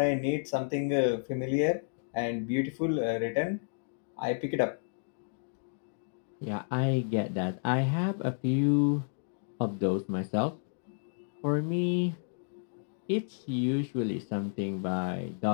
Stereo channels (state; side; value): silent; right; digital silence